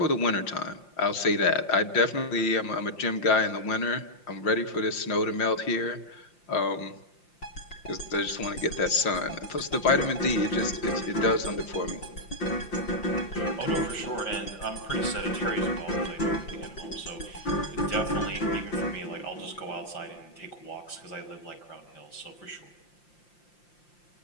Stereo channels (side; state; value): right; late; 5.7 ms